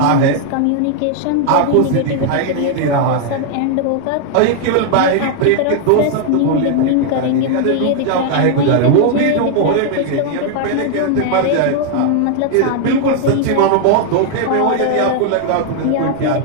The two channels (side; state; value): both; different; correlation 0.00